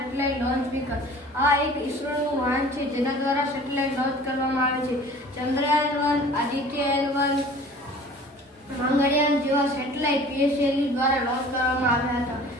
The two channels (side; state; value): both; normal; correlation 0.46